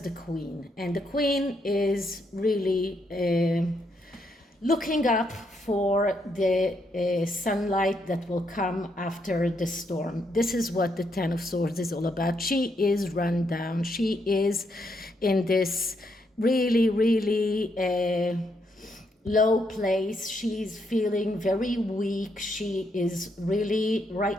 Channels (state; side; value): normal; both; correlation 0.77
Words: Queen. And the Queen is really looking up for the sunlight that will come after the storm. This is what the Ten of Swords is all about. She is run down. She is in this really low place. She's feeling very weak. She is really